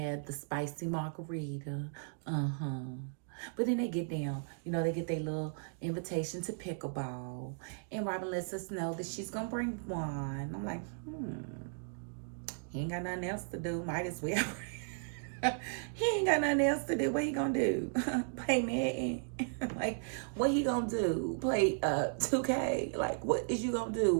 the spicy margarita. But then they get down. You know, they get their little invitation to pickleball. And Robin lets us know that she's going to bring wine. I'm like, he ain't got nothing else to do. Might as well. He ain't got nothing else to do. What he gonna do? Play Madden? Like, what he gonna do? Play 2K? Like, what is you gonna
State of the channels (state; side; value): silent; left; digital silence